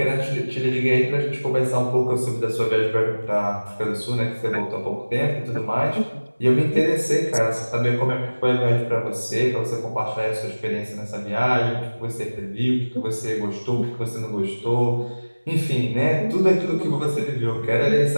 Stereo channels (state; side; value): inverted; both; correlation -1.00